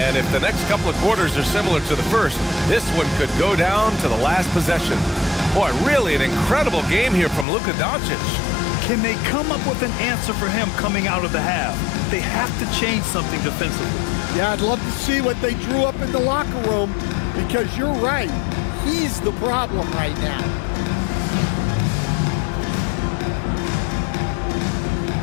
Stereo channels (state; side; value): drops out; right; at 7.5 s